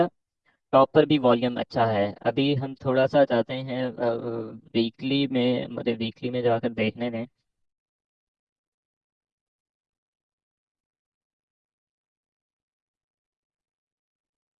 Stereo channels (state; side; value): identical; both; correlation 1.00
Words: टॉप पर भी वॉल्यूम अच्छा है। अभी हम थोड़ा सा जाते हैं वीकली में, मुझे वीकली में जाकर देखने दें।